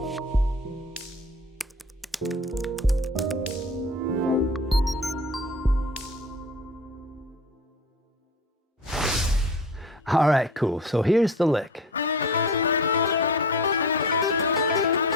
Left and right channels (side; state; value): both; normal; correlation 0.37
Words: All right, cool. So here's the lick.